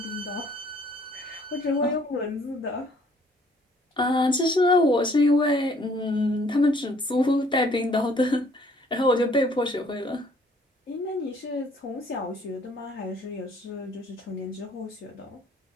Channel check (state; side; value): normal; both; correlation 0.60